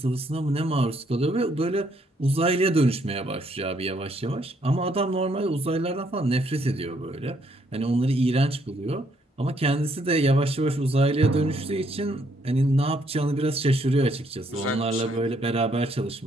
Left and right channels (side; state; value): both; normal; correlation 0.70